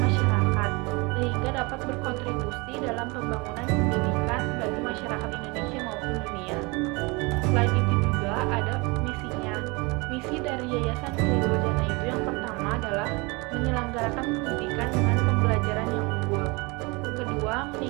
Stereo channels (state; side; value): quieter; left; 26.9 dB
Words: sehingga dapat berkontribusi dalam pembangunan pendidikan bagi masyarakat Indonesia maupun dunia. Selain itu juga ada misinya. Misi dari Yayasan Riyadul Jannah itu yang pertama adalah menyelenggarakan pendidikan dengan pembelajaran yang unggul. Kedua,